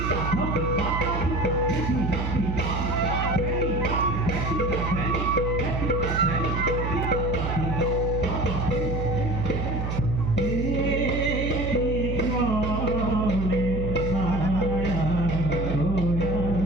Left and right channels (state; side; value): noise; right; hum, 2 dB below the sound